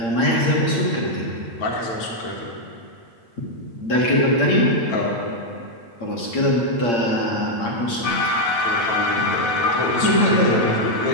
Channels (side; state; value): right; late; 8.7 ms